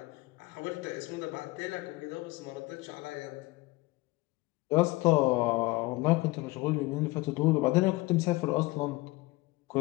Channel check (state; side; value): quieter; right; 21.5 dB